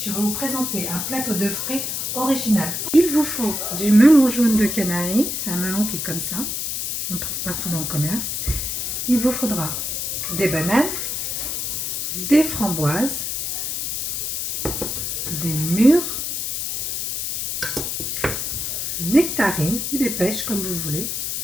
vais vous présenter un plateau de frais original. Il vous faut du melon jaune de Canaries, c'est un melon qui est comme ça, on le trouve partout dans le commerce. Il vous faudra des bananes, des framboises, des mûres, nectarines ou des pêches comme vous voulez,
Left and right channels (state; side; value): noise; left; hiss, 2 dB below the sound